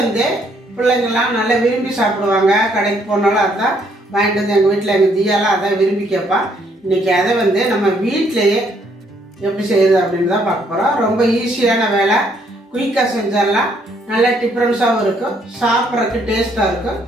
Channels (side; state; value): both; normal; correlation 0.69